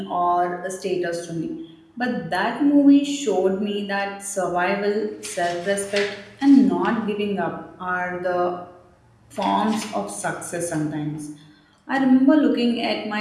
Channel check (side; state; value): both; identical; correlation 1.00